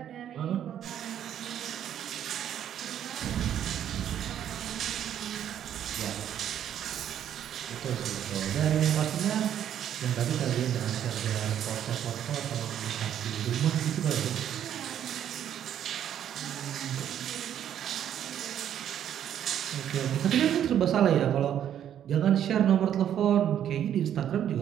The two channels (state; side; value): quieter; left; 10.1 dB